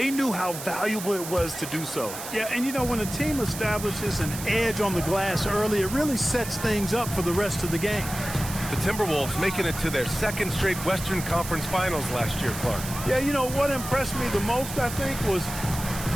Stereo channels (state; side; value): noise; right; hiss, 9 dB below the sound